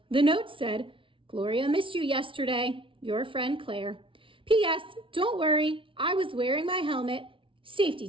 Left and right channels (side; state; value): left; late; 0.25 ms